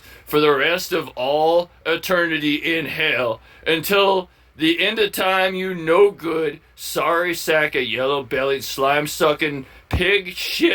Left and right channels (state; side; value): identical; both; correlation 1.00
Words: for the rest of all eternity in hell, until the end of time, you no good sorry sack of yellow-bellied, slime-sucking, pig